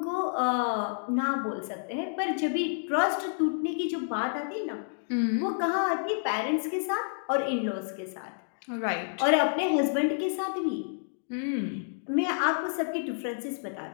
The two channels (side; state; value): right; silent; digital silence